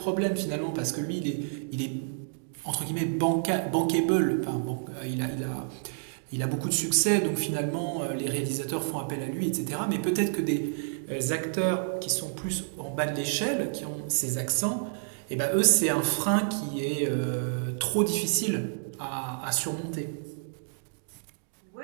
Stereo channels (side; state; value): left; silent; digital silence